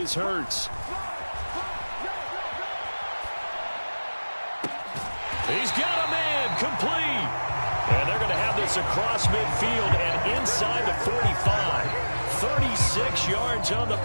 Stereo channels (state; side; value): inverted; both; correlation -1.00